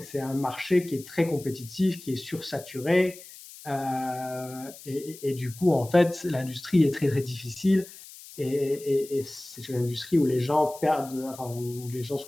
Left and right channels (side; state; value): left; noise; hiss, 17 dB below the sound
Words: c'est un marché qui est très compétitif, qui est sursaturé, et du coup, en fait, l'industrie est très, très difficile et c'est une industrie où les gens perdent, enfin, où les gens